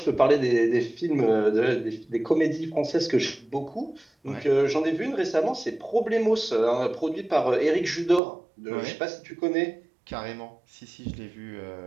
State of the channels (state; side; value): drops out; left; at 8.2 s